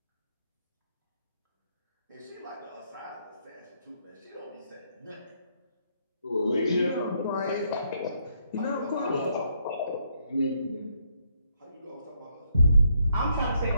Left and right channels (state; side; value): inverted; both; correlation -0.74